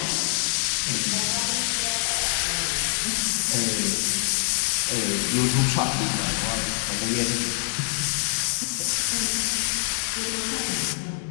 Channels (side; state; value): right; silent; 59 dB below the other